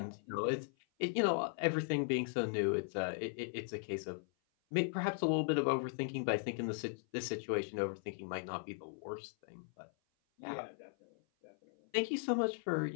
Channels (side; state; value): right; silent; 52 dB below the other